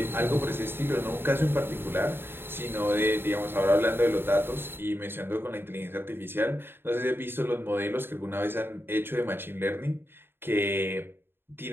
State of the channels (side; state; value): left; late; 0.11 ms